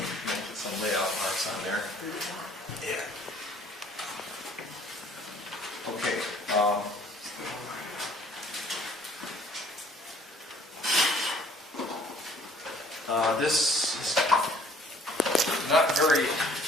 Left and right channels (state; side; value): normal; both; correlation 0.57